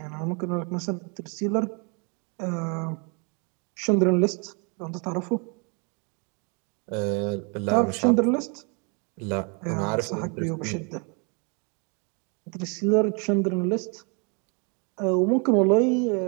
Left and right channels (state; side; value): quieter; left; 34.9 dB